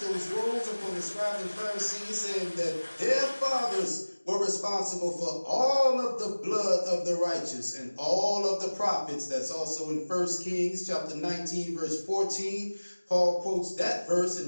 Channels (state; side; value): inverted; both; correlation -1.00